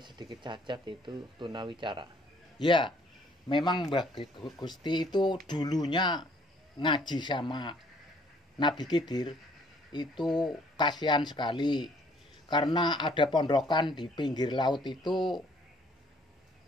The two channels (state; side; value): normal; both; correlation 0.61